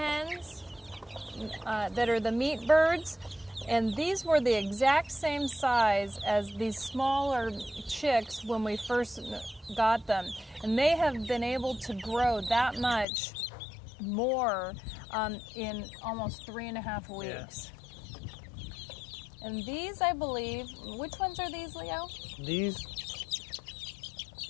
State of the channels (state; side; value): drops out; right; at 13.1 s